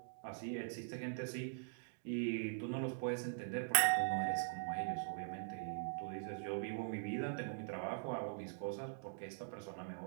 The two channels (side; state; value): left; silent; digital silence